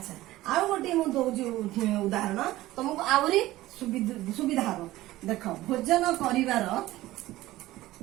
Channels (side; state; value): left; quieter; 16.7 dB